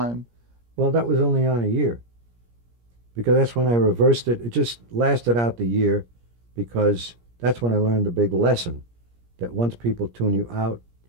Well, that was only on a year because that's when I reversed it. It just lasted out the year because that's when I learned the big lesson that once people tune you out,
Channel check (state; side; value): late; left; 17 ms